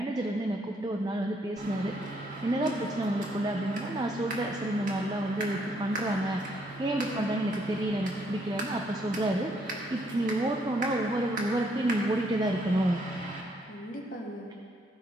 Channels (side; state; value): both; normal; correlation 0.71